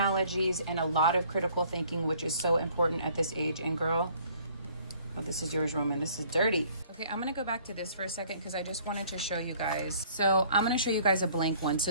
and a lot of critical thinking, which is so important at this age. And girl, oh, this is yours, Roman. This is dirty. Okay, I'm gonna go back to this for a second because I just wanted to show you guys. So I'm gonna show you guys a blank one.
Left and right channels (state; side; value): inverted; both; correlation -0.57